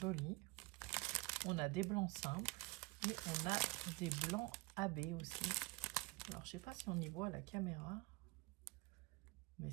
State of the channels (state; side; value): quieter; left; 24.0 dB